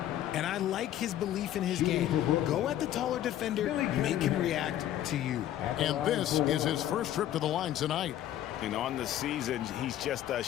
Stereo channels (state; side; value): quieter; right; 12.2 dB